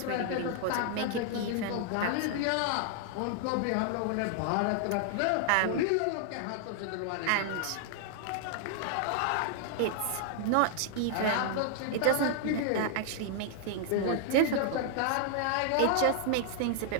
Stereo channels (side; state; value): both; different; correlation -0.01